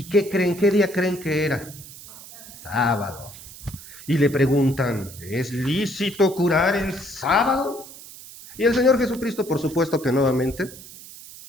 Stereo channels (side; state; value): right; noise; hiss, 17 dB below the sound